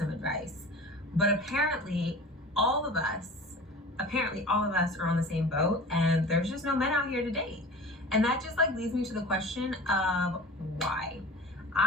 advice. But apparently all of us are on the same boat, and there's just no men out here to date. And that just leads me to the question of why.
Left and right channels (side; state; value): both; normal; correlation 0.38